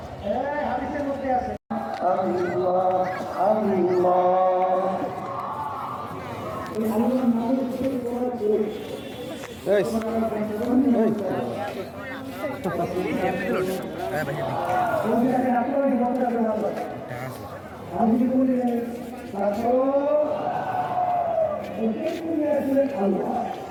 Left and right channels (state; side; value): identical; both; correlation 1.00